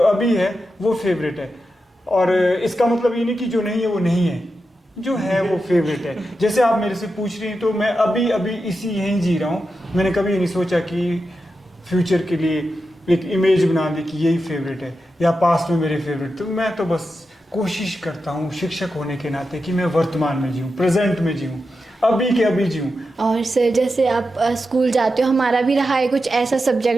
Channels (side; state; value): both; normal; correlation 0.89